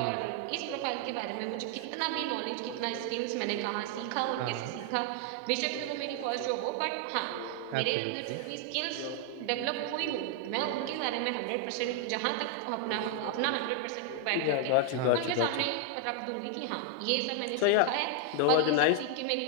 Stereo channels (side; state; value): both; different; correlation 0.00